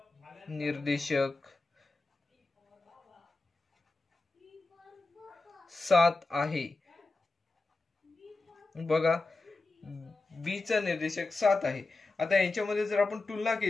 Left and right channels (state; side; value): quieter; right; 3.4 dB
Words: 7 आहे. बघा बी चा निर्देशक 7 आहे. आता यांच्यामध्ये जर आपण तुलना